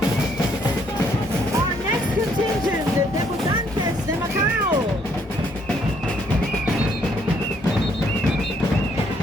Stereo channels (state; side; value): normal; both; correlation 0.68